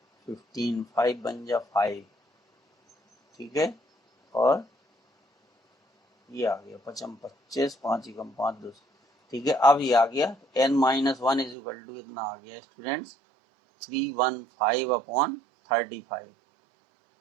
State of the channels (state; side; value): drops out; left; at 11.6 s